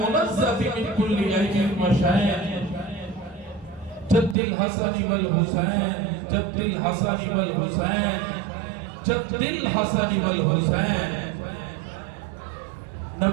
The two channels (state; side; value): drops out; left; at 4.4 s